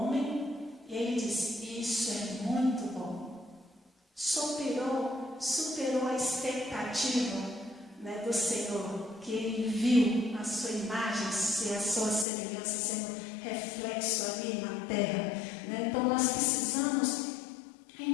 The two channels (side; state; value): right; drops out; at 12.2 s